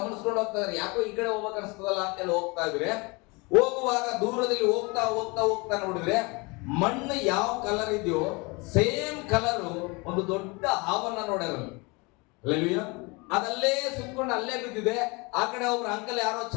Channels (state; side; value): quieter; right; 27.5 dB